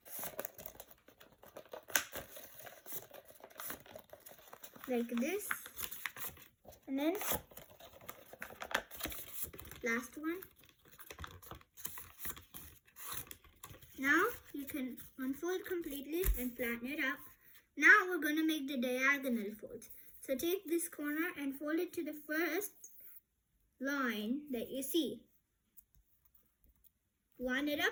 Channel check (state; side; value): identical; both; correlation 1.00